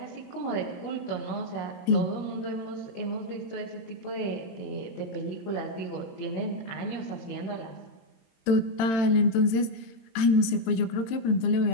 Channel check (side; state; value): right; late; 22 ms